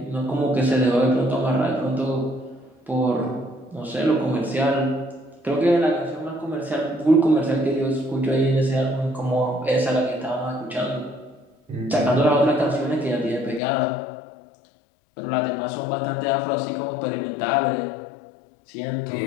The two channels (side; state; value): right; drops out; at 13.6 s